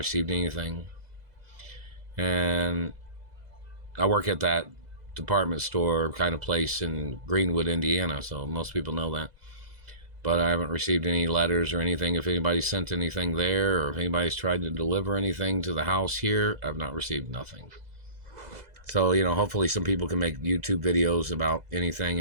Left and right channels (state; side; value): late; left; 2.0 ms